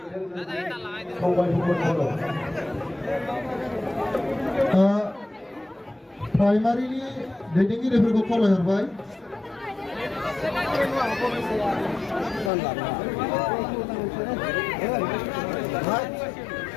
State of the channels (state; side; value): drops out; right; at 12.5 s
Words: प्राइमारिनि दैदेनगिरिफोरखौ खावलायहरबाय